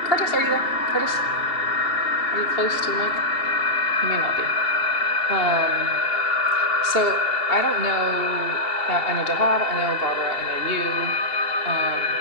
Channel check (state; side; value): late; right; 2.7 ms